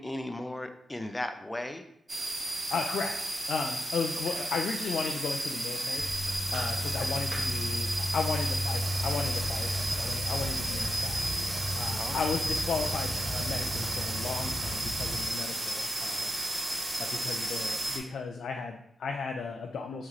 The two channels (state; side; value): normal; both; correlation 0.88